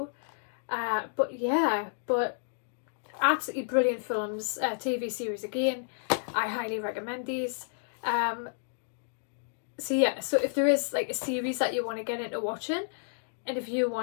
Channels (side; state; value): right; silent; digital silence